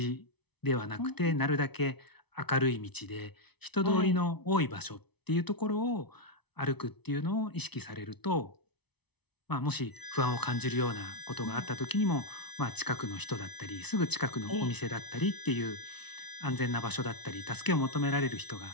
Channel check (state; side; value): late; right; 0.99 ms